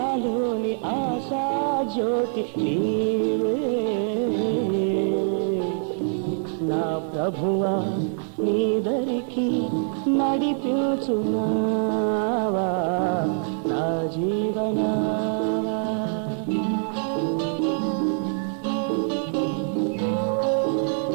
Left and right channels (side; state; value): left; silent; digital silence